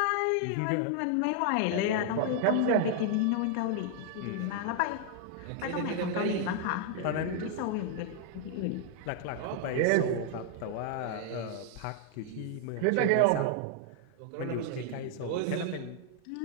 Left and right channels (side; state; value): both; different; correlation 0.00